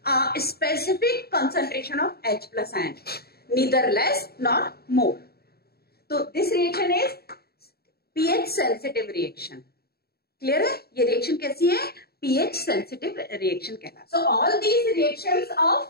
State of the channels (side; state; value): right; late; 0.45 ms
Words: specific concentration of H plus ion, neither less not more. तो this reaction is pH sensitive reaction, clear है। ये रिएक्शन कैसी है, pH सेंसिटिव रिएक्शन कहलाता है। So all these reactions